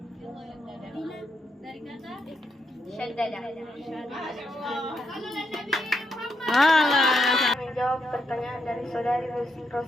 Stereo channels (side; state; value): both; normal; correlation 0.80